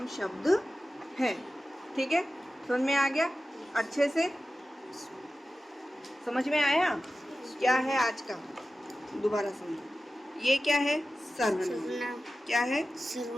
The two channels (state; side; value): normal; both; correlation 0.94